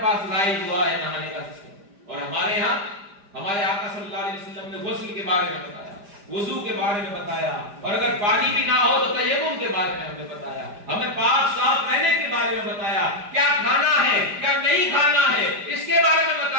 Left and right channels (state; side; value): late; left; 5.0 ms